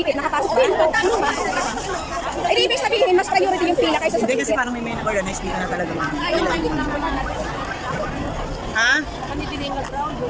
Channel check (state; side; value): identical; both; correlation 1.00